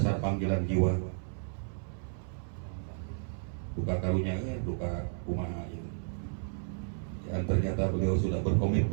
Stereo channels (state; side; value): silent; left; 56 dB below the other